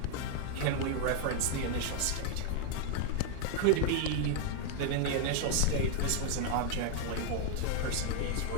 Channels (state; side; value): different; both; correlation 0.00